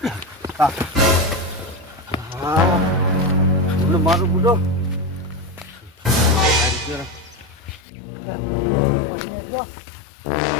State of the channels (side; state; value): right; drops out; at 7.8 s